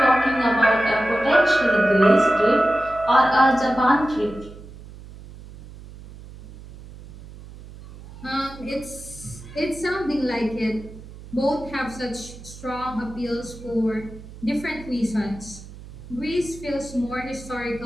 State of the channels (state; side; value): noise; right; hum, 17 dB below the sound